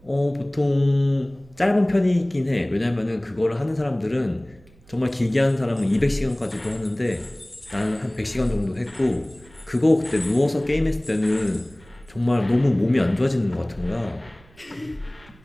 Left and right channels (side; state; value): right; noise; rumble, 26 dB below the sound